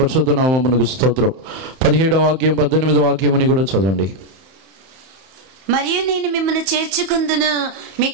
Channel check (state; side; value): late; left; 31 ms